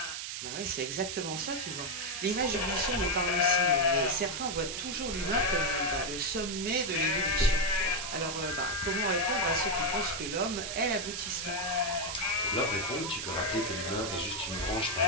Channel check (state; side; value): noise; right; hiss, 5 dB below the sound